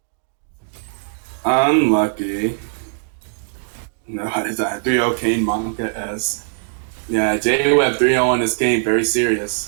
Unlucky. No, what is that? 3-0 Kane Monica S. Yeah, J-Web 3-0 in this game, very serious.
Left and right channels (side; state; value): left; silent; digital silence